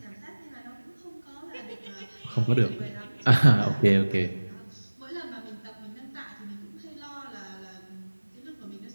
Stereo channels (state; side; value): inverted; both; correlation -1.00